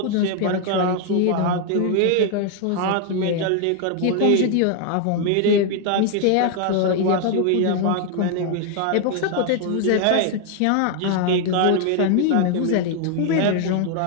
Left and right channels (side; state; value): both; different; correlation 0.00